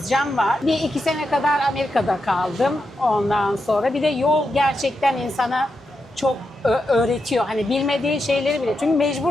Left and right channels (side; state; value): both; normal; correlation 0.86